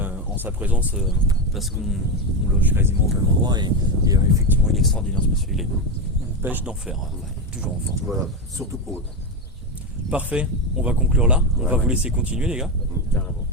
en sa présence parce qu'on loge quasiment au même endroit et effectivement, il est extraordinaire ce monsieur. Il est pêche d'enfer, toujours en forme. voilà, surtout pour eux. Parfait, on va conclure là. On va Ouais. vous laisser continuer, les gars. Carrément.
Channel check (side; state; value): both; normal; correlation 0.13